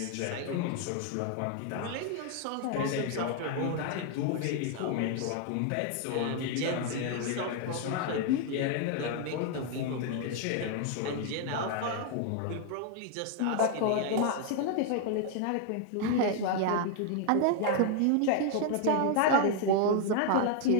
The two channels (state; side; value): different; both; correlation 0.00